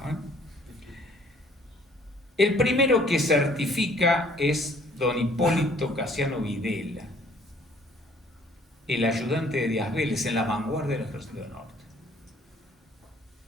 El primero que certifica es don Hipólito Casiano Videla, el ayudante de Díaz Vélez en la vanguardia del Ejército del Norte.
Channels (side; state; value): both; normal; correlation 0.58